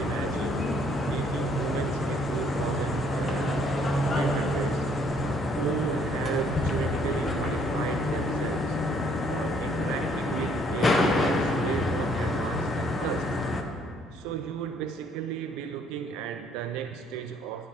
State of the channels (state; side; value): normal; both; correlation 0.64